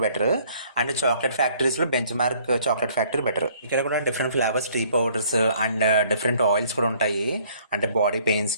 better, and chocolate ఫ్యాక్టరీస్లో Benchmark chocolate factory better. ఇక్కడ కూడా different flavours tea powders and different oils కూడా ఉంటాయి. అంటే బాడీ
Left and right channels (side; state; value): both; inverted; correlation -0.60